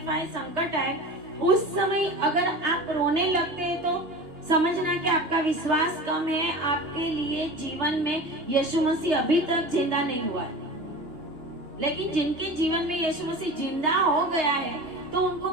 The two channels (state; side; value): late; left; 2.8 ms